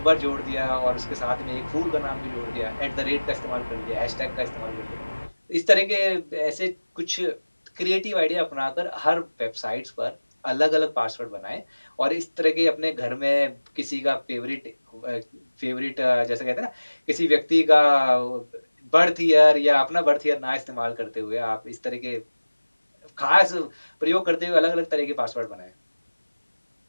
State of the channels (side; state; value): both; inverted; correlation -1.00